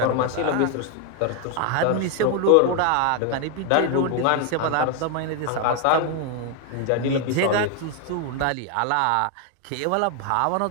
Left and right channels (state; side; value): different; both; correlation 0.01